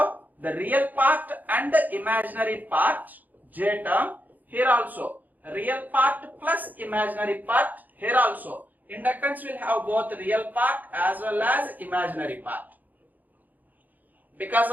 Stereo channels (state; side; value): late; left; 0.083 ms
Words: the real part and the imaginary part, J term. Here also real part plus imaginary part. Here also inductance will have both real part as well as imaginary part. Because